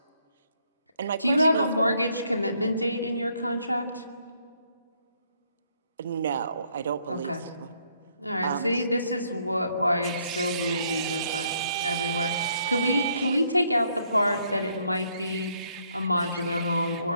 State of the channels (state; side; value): inverted; both; correlation -0.70